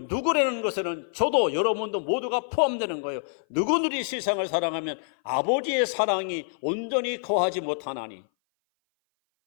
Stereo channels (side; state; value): right; silent; 58 dB below the other